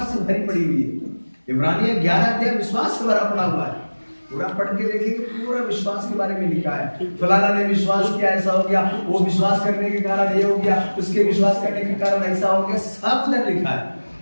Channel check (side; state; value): both; inverted; correlation -1.00